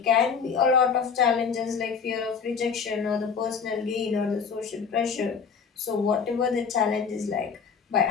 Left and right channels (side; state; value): right; quieter; 6.1 dB